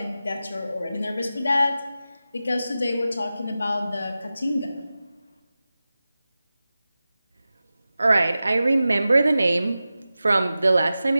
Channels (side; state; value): both; inverted; correlation -0.94